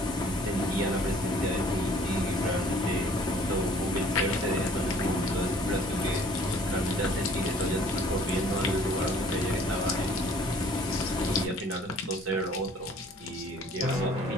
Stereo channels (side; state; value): both; normal; correlation 0.54